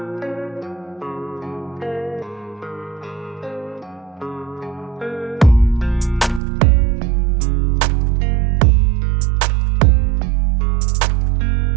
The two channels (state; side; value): drops out; left; at 6.4 s